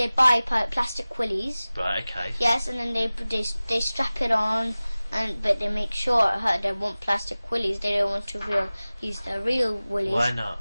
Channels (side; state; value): both; inverted; correlation -0.98